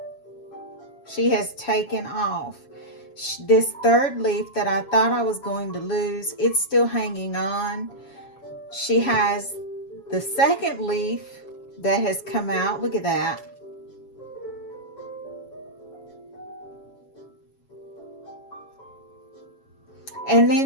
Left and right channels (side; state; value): right; late; 7.3 ms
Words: She has taken off. This third leaf that I thought I was going to lose, it's still hanging on. She has the second leaf that has come out. Look at that. And